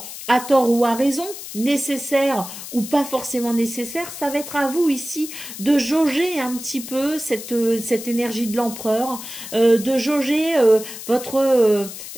à tort ou à raison, nécessaire ou pas forcément nécessaire, ça va être à vous ici de jauger un petit peu cette énergie de l'empereur, de jauger votre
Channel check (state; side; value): noise; left; hiss, 11 dB below the sound